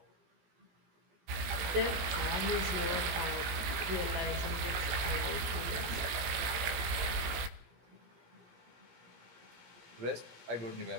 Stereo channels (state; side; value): late; left; 18 ms